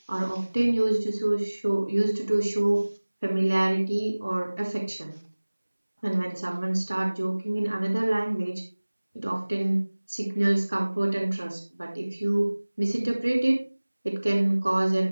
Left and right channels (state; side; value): inverted; both; correlation -1.00